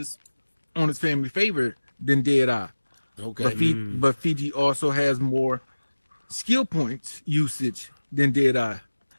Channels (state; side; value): inverted; both; correlation -1.00